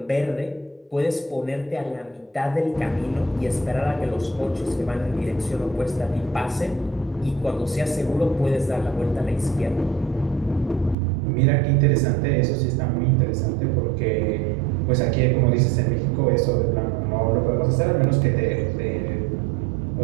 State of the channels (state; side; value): drops out; left; at 11.0 s